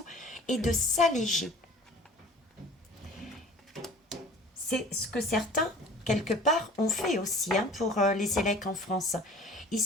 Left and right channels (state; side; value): normal; both; correlation 0.46